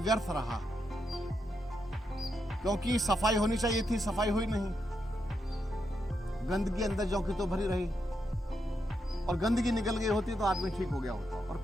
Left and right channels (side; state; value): both; normal; correlation 0.82